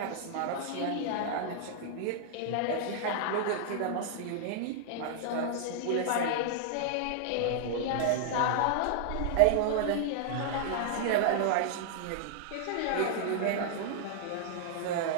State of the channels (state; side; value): different; both; correlation -0.01